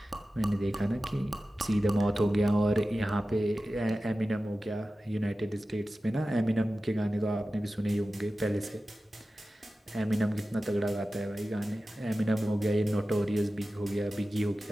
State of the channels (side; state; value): both; normal; correlation 0.95